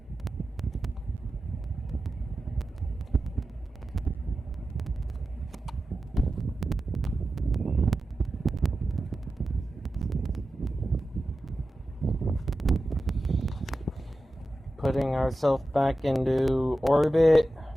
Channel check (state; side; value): normal; both; correlation 0.93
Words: Putting ourselves back into orbit.